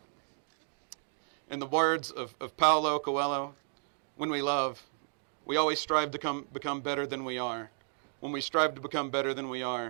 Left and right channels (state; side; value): silent; left; 56 dB below the other